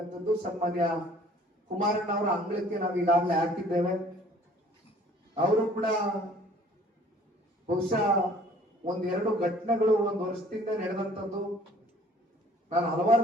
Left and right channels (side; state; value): both; normal; correlation 0.54